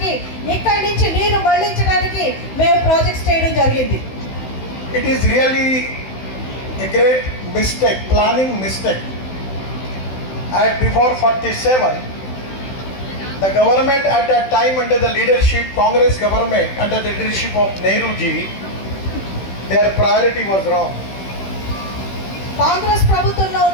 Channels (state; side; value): late; right; 16 ms